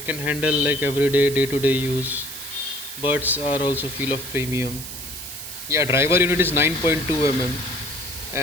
can handle like everyday day-to-day use. Buds are also feel of premium. Yeah, driver unit is 9.2 mm,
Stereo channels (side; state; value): right; noise; hiss, 10 dB below the sound